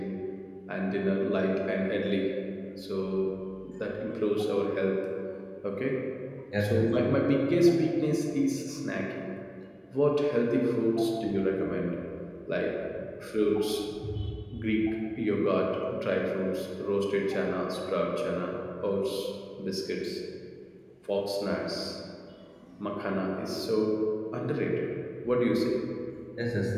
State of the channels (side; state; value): both; identical; correlation 1.00